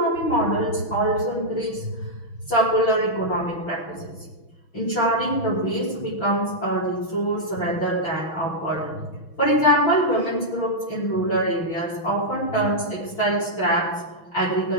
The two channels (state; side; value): late; right; 6.2 ms